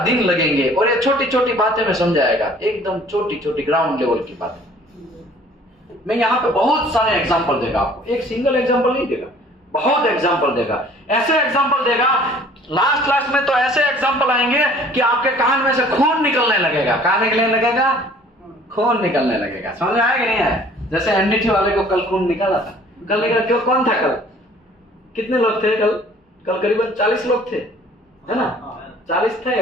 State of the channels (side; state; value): both; normal; correlation 0.53